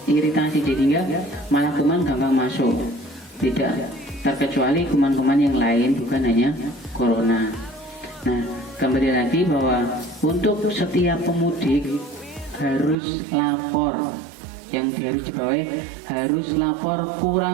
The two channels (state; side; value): drops out; left; at 13.0 s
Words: jadinya malah kuman gampang masuk. Tidak terkecuali kuman-kuman yang lain, bukan hanya corona. Nah kembali lagi bahwa untuk setiap pemudik harus lapor, yang harus dibawahi harus lapor